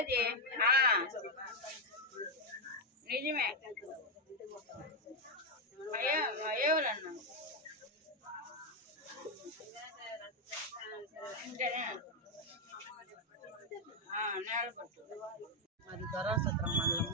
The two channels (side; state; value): both; normal; correlation 0.03